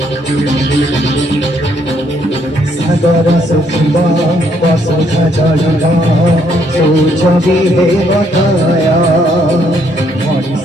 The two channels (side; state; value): both; normal; correlation 0.70